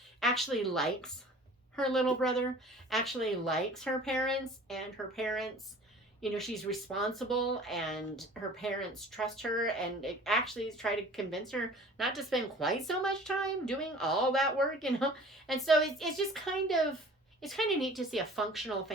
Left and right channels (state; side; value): normal; both; correlation 0.46